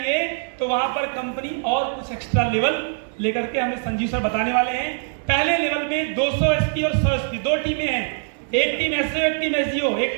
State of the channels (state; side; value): silent; left; digital silence